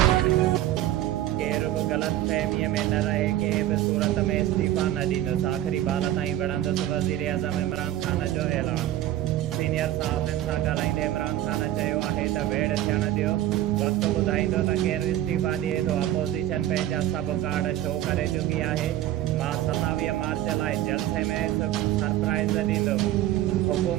केर बि ग़लतफ़हमीअ में न रहे, कंहिं बि सूरत में इस्तीफ़ा न ॾींदुसि। आख़िरी बाल ताईं विढ़ंदुसि वज़ीर आज़म इमरान ख़ान जो ऐलान। सीनियर सहाफ़ियुनि सां ॻाल्हाईंदे इमरान ख़ान चयो आहे त वेड़ थियण ॾियो, वक़्तु ॿुधाईंदो त केरु इस्तीफ़ा ॾिए थो। अपोज़िशन पंहिंजा सभु कार्ड शो करे चुकी आहे। मां 27 मार्च लाइ जलसे में सरप्राइज़ ॾींदुमि।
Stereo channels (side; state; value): left; quieter; 13.3 dB